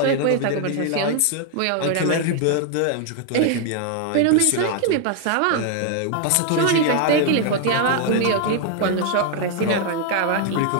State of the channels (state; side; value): different; both; correlation 0.00